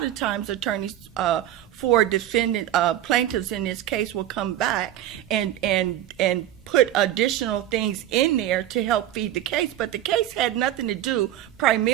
of times attorneys for plaintiffs in this case will come back and put additional things in there to help feed the case. But the case had nothing to do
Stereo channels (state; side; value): quieter; left; 12.3 dB